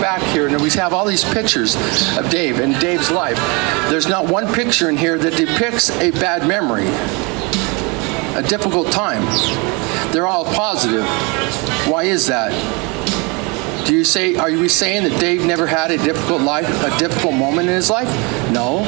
here and we have all these pictures of Dave and Dave's life. There's not one picture in here that depicts a bad memory, a difficult time. They're all positive. Why is that? Are we saying that Dave never had a difficult life, a difficult moment in his life? No.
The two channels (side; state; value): left; quieter; 29.2 dB